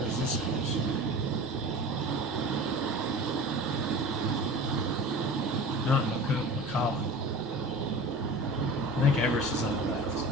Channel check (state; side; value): normal; both; correlation 0.36